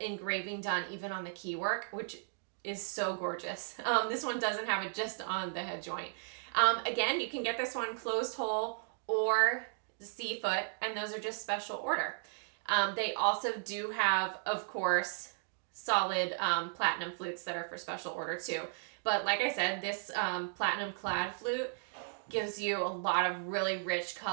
engraving done even on the key work, which is so gorgeous. This one doesn't have it just on the head joint. Again, you can get this one closed hole or C foot, and those are just special order. They also do have, of course, solid platinum flutes that are for special order too. But like I said, this platinum clad flute gives you a lot of really rich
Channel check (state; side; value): silent; left; digital silence